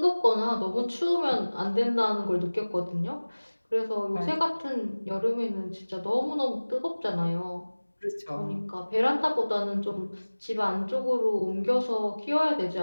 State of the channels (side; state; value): both; inverted; correlation -1.00